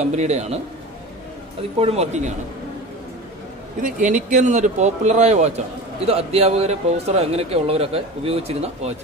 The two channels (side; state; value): both; normal; correlation 0.32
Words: അതിപ്പോഴും വർക്കിംഗ് ആണ്. ഇത് എനിക്കൻ എന്നൊരു പോപ്പുലറായ വാച്ചാണ്. ഇത് അധ്യാപകർ, പ്രൊഫസർ അങ്ങനെയൊക്കെ ഉള്ളവരൊക്കെ ഉപയോഗിച്ചിരുന്ന